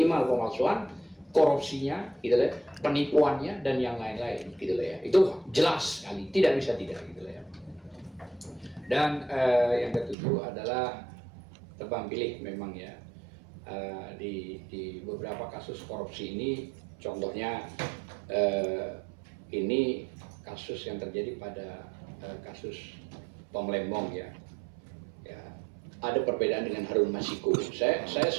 pemalsuan, korupsinya gitu ya, penipuannya dan yang lain-lain gitu ya. Itu jelas sekali, tidak bisa tidak gitu ya. Dan yang ketujuh adalah tebang pilih memang ya, di beberapa kasus korupsi ini, contohnya ini kasus yang terjadi pada kasus Tom Lembong ya, ada perbedaan dengan Harun Masiku. Saya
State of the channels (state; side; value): drops out; left; at 10.2 s